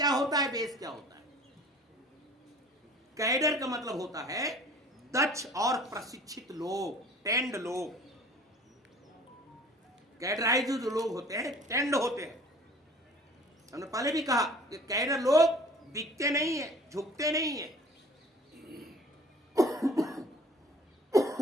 होता है, बेस क्या होता है? कैडर का मतलब होता है दक्ष और प्रशिक्षित लोग, टेंड लोग। कैडराइज जो लोग होते हैं टेंड होते हैं। हमने पहले भी कहा कि कैडर लोग बिकते नहीं है, झुकते नहीं है।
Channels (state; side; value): normal; both; correlation 0.48